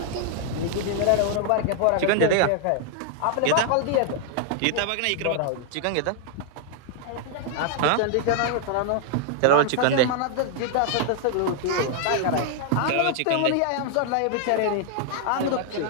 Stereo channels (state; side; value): different; both; correlation 0.00